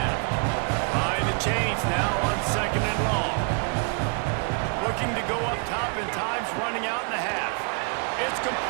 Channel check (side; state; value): left; quieter; 37.2 dB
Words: Behind the chains now on 2nd and long. Looking to go up top, and time's running out in the half. It's